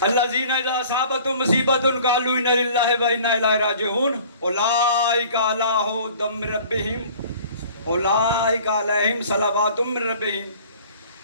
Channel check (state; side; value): inverted; both; correlation -0.49